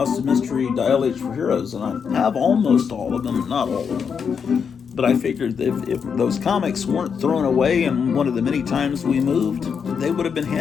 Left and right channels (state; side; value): quieter; right; 6.6 dB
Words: of Mystery Dial H for Heroes, and I have almost all of them, not all of them. But I figured that if those comics weren't thrown away in one of the many times we moved, they would have been